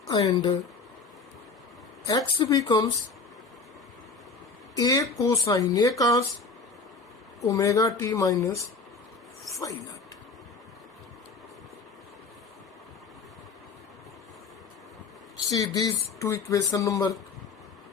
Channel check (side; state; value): right; quieter; 4.5 dB